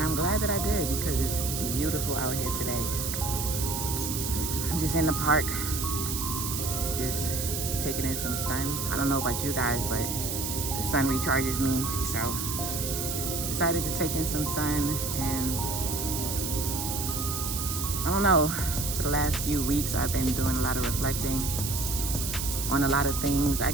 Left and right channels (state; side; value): noise; right; hiss, 3 dB below the sound